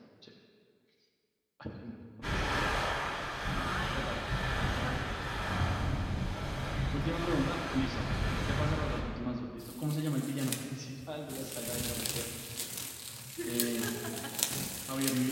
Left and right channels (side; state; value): both; identical; correlation 1.00